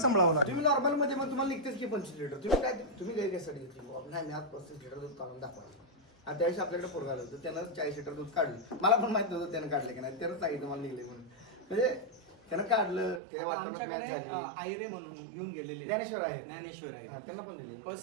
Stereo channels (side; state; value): left; drops out; at 13.2 s